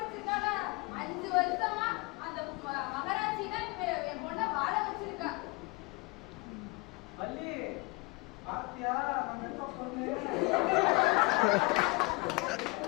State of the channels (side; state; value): right; quieter; 27.1 dB